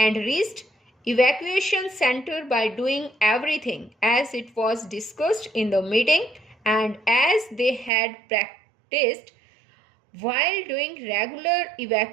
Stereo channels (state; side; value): drops out; left; at 7.9 s